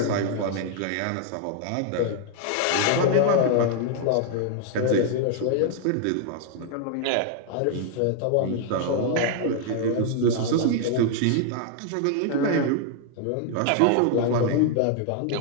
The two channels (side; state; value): both; different; correlation 0.00